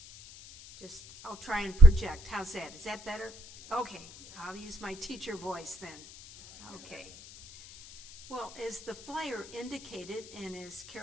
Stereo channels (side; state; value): left; noise; hiss, 19 dB below the sound